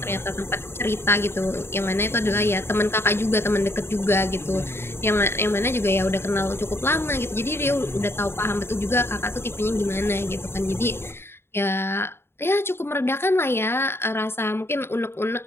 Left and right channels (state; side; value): late; right; 0.11 ms